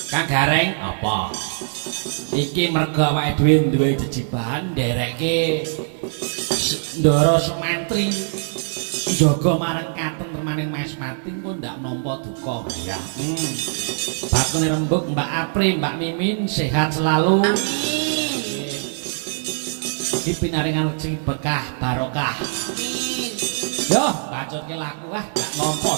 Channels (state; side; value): silent; left; digital silence